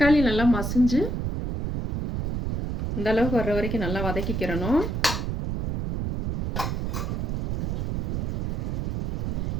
நல்லா மசிஞ்சு இந்த அளவுக்கு வர்ற வரைக்கும் நல்லா வதக்கிக்கிறணும்.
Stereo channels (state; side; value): noise; right; rumble, 1 dB below the sound